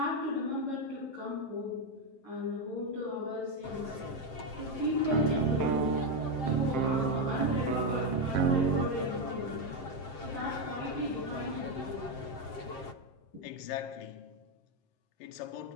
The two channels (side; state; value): right; late; 7.6 ms